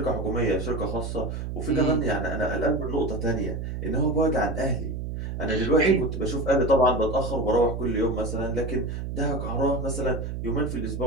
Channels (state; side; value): noise; right; hum, 5 dB below the sound